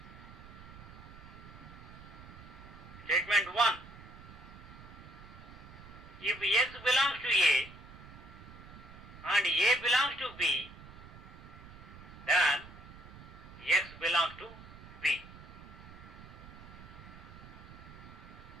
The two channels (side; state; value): right; noise; rumble, 16 dB below the sound